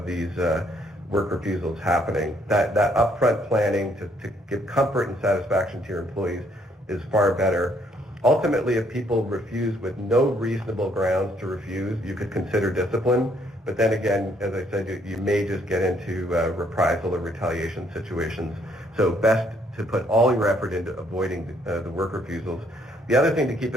work refusals happening. That upfront planning to give comfort and satisfaction to your employees is far better. Ultimately, if people refuse with no reasonable grounds to refuse, you could consider discipline. But then again, as I said, you may just get into reprisal or retaliation situations. So best to put all your effort into avoiding the work refusals. The other thing to keep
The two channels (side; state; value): both; normal; correlation 0.68